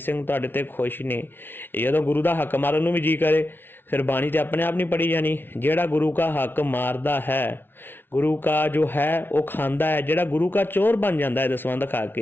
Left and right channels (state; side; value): late; right; 0.10 ms